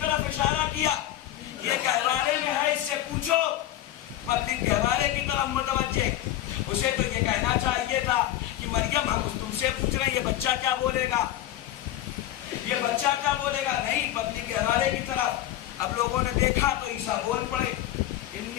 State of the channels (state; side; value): quieter; right; 13.4 dB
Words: طرف اشارہ کیا، یہ گہوارے میں ہے، اس سے پوچھو. پبلک گہوارے کی طرف متوجہ. اسے تو یہ کہنا چاہیے تھا کہ مریم ہم تم سے پوچھ رہے ہیں، یہ بچہ کیا بولے گا، یہ بچہ کیا بولے گا. نہیں، پبلک گہوارے کی طرف. اب لوگوں نے دیکھا تو عیسیٰ بول پڑے،